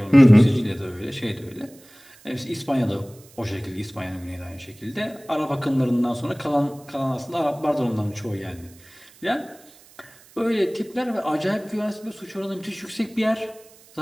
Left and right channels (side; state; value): right; noise; hiss, 25 dB below the sound